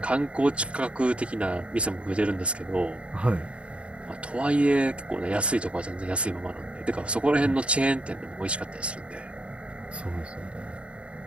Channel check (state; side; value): late; left; 0.059 ms